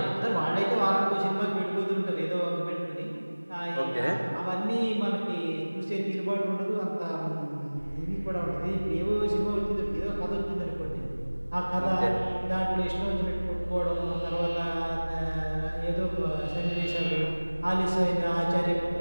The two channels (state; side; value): inverted; both; correlation -1.00